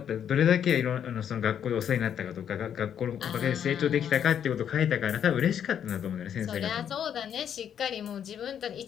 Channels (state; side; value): quieter; right; 8.9 dB